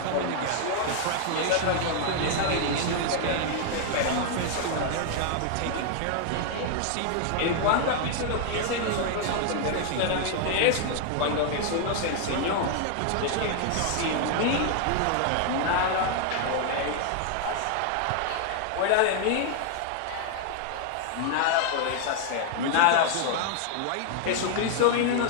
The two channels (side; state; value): both; different; correlation 0.00